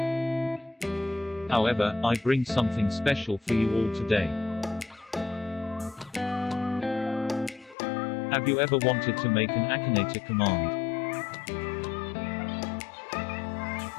However, I bring something special for you all today. Have you ever wanted to make an AKINATOR command?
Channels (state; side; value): drops out; right; at 7.8 s